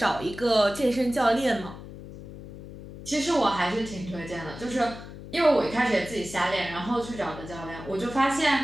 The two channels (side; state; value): left; noise; hum, 14 dB below the sound